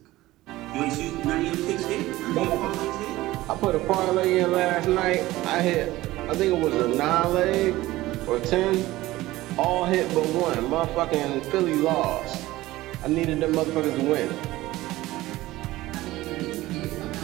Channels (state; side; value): quieter; left; 17.4 dB